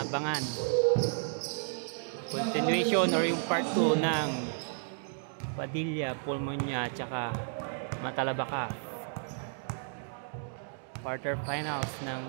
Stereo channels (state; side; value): silent; left; digital silence